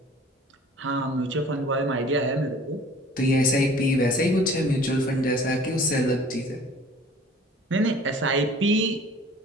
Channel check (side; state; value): both; normal; correlation 0.49